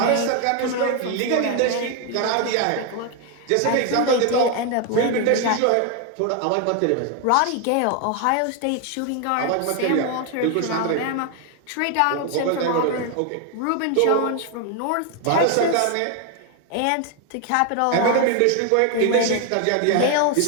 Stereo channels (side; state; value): both; different; correlation 0.01